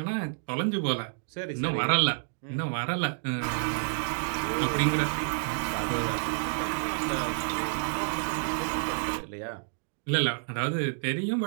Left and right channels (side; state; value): left; silent; digital silence